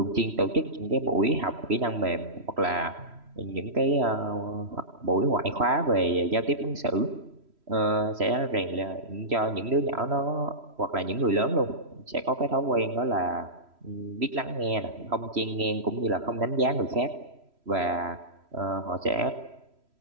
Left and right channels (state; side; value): late; left; 3.1 ms